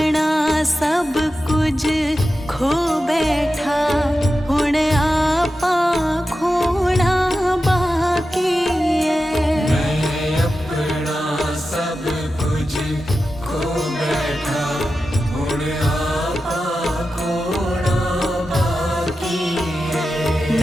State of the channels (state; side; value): normal; both; correlation 0.92